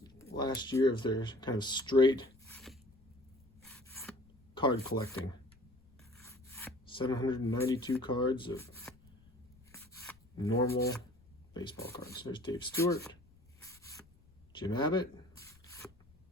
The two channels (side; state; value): left; noise; rumble, 28 dB below the sound